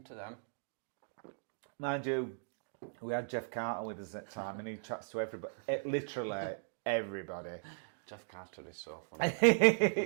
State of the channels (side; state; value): left; silent; digital silence